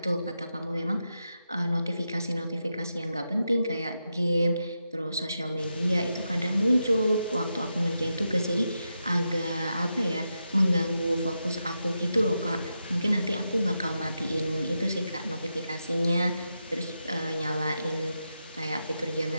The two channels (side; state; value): both; inverted; correlation -0.87